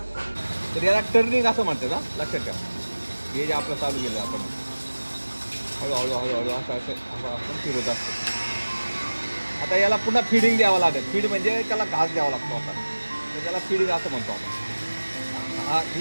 तर याला टर्निंग असं म्हणतात. हा लक्षात ठेवा, हे जे आपलं चालू केलं आपण हळूहळू हळूहळू असं असं आपण फिरत असतो. आता याला पुन्हा फीडिंग द्यावं लागेल. फीड म्हणजे त्याला घास द्यावा लागतो आपण, तर त्याला फीडिंग असं म्हणतो आपण. हा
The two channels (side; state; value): both; inverted; correlation -1.00